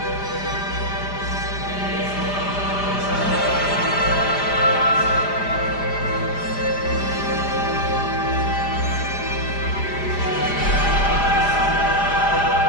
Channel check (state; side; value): late; right; 4.9 ms